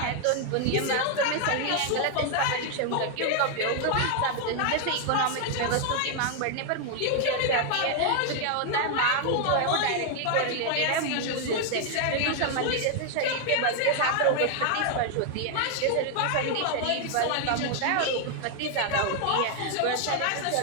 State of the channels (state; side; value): different; both; correlation 0.00